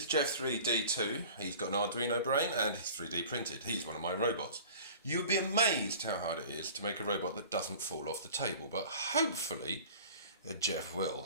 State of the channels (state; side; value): inverted; both; correlation -0.43